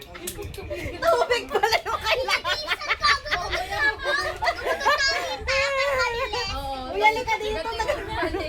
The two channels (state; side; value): identical; both; correlation 1.00